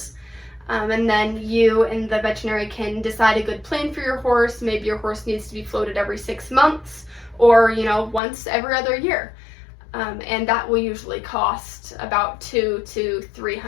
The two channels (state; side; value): drops out; right; at 8.2 s